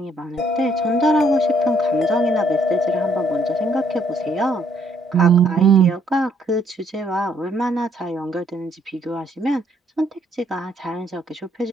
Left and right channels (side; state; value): both; normal; correlation 0.67